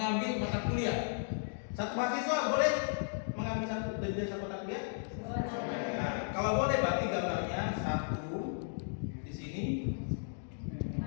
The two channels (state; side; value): silent; right; digital silence